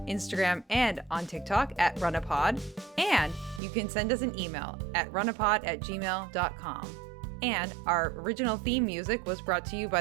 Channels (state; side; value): drops out; left; at 3.6 s